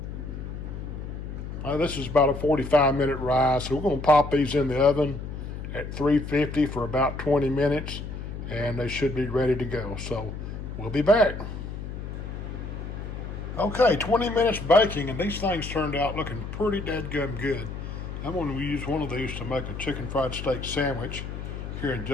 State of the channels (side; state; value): left; noise; hum, 8 dB below the sound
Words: This is about a 45-minute rise, so we're going to pop these in the oven at 350 for about 20 minutes, and they should be ready to go. So we'll be back. Okay, 20 minutes baking, and these things turned out looking pretty dadgum good. I'm going to use one of these to make a chicken fried steak sandwich here in